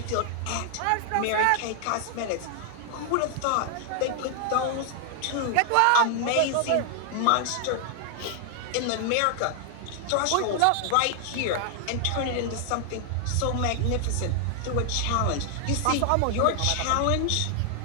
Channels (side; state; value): both; different; correlation 0.00